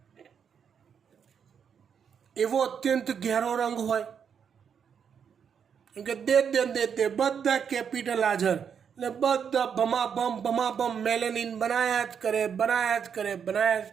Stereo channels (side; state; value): left; quieter; 7.3 dB